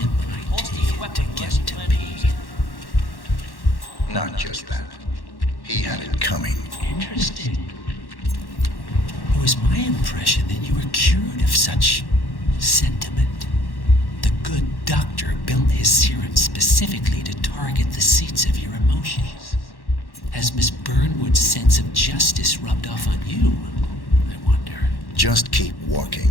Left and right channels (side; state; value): right; late; 1.1 ms